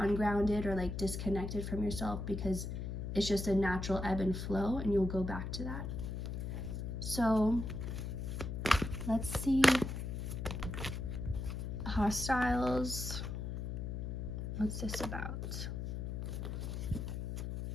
or like disconnected from yourself, because it's just a natural ebb and flow, and you'll go back to that. So let's see. Hostiles. What's this about?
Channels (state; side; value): noise; left; hum, 4 dB below the sound